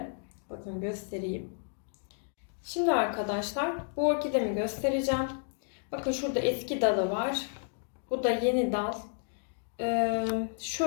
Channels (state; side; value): silent; right; 57 dB below the other